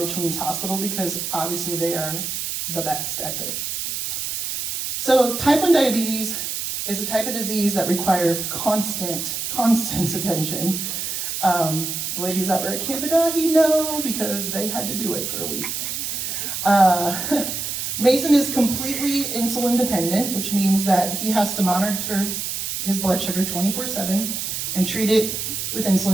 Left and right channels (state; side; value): noise; right; hiss, 3 dB below the sound